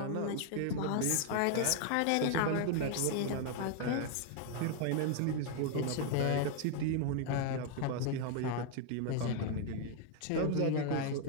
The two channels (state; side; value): different; both; correlation 0.00